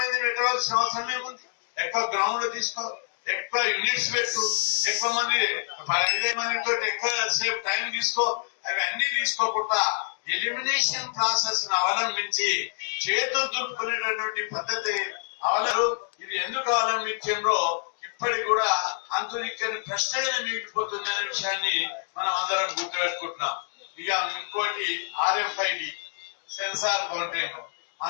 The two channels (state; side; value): silent; right; 59 dB below the other